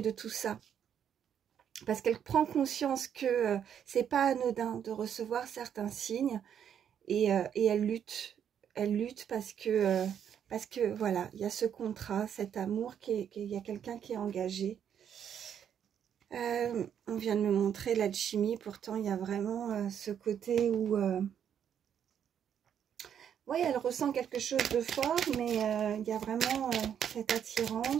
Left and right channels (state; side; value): quieter; left; 8.8 dB